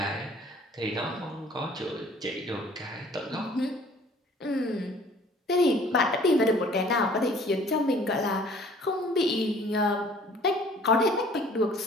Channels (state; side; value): normal; both; correlation 0.53